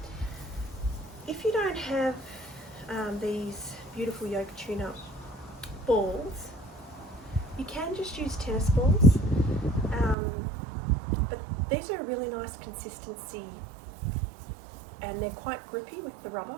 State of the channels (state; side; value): drops out; left; at 10.2 s